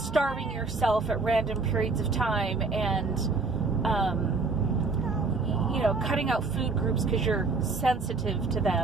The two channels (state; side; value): quieter; left; 4.1 dB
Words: yourself at random periods of time and you know, cutting out food groups because you're sensitive to